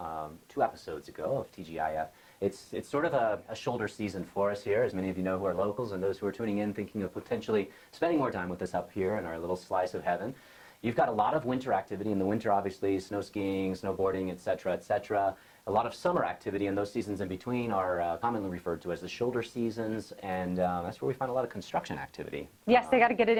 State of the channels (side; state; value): both; identical; correlation 1.00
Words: 2 episodes ago of TGIF, it's sort of a shoulder season for us here, as many of you know who are locals and those who are tuning in thinking of potentially spending more time with us up here in our little slice of heaven. You've got a lot of winter activity in the winter, obviously, snow skiing, snowboarding, etc., etc. A lot of summer activity, and those seasons in between are commonly referred to as the shoulder seasons, and that's where we find a lot of construction activity. Yes, they got to get it